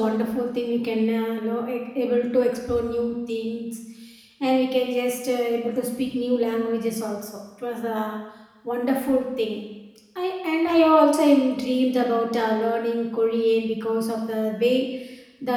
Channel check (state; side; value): identical; both; correlation 1.00